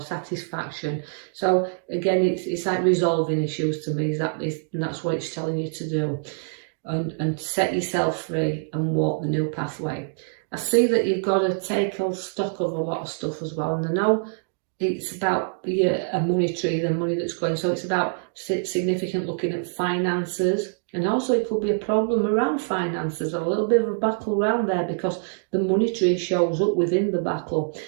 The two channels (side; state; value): left; silent; digital silence